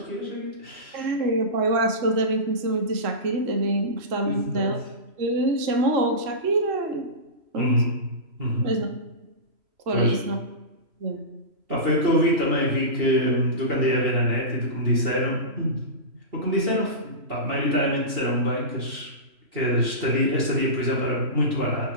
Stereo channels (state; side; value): late; left; 3.0 ms